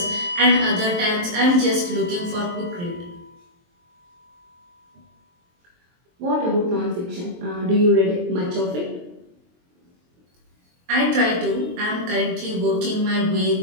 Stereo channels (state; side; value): late; left; 23 ms